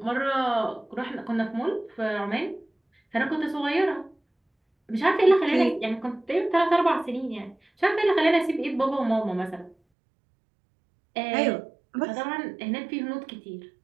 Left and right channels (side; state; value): left; drops out; at 9.8 s